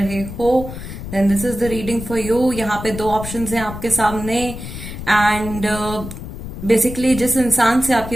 हो, then this is the reading for you. यहाँ पे दो ऑप्शंस हैं आपके सामने एंड बेसिकली जिस इंसान से आपकी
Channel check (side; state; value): left; noise; rumble, 9 dB below the sound